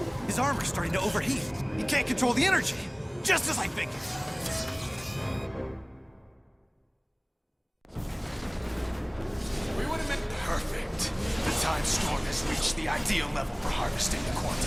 His armor's starting to overheat. He can't control the energy. Just as I figured. We would have been perfect. The time storm has reached the ideal level for harvesting the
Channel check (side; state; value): both; identical; correlation 1.00